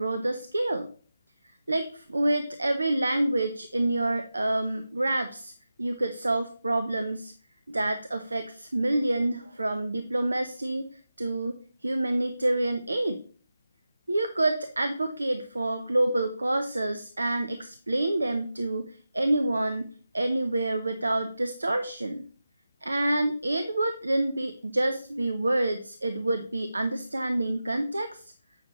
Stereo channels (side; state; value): both; inverted; correlation -0.93